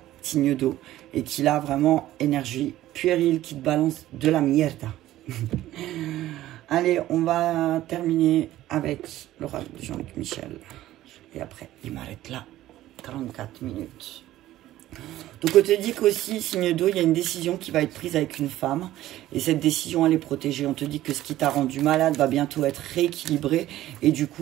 signe d'eau, et qui a vraiment énergie puérile, qui te balance de la mierda. Allez, on va terminer avec l'oracle de Jean-Luc Michel. Et après, il m'arrête là. 44 minutes. Donc, on te dit qu'aussi, signe d'eau, il y a une décision qui va être prise avec une femme. Et cette décision, elle est protégée. On te dit que ce qui t'a rendu malade va bientôt être rééquilibré. Et du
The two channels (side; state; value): left; quieter; 14.5 dB